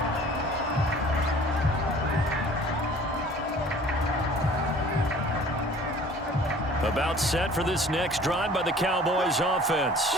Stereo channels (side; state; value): both; normal; correlation 0.49